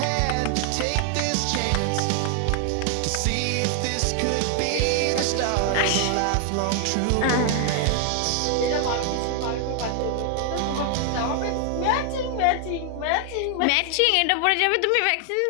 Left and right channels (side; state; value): both; different; correlation 0.00